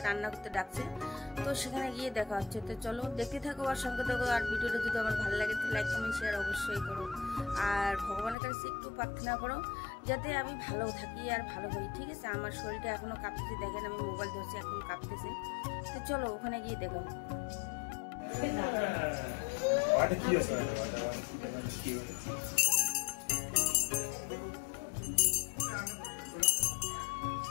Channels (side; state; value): right; drops out; at 8.3 s